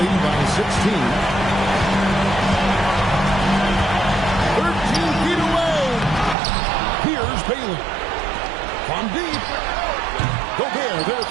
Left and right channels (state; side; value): drops out; left; at 6.4 s